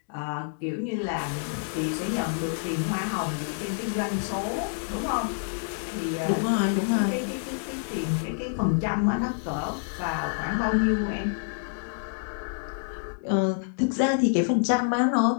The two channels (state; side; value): silent; right; digital silence